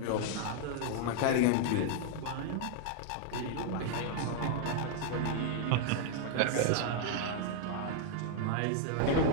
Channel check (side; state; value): both; different; correlation 0.00